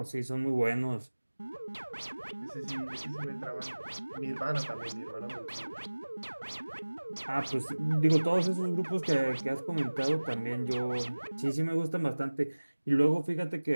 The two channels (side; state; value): both; inverted; correlation -1.00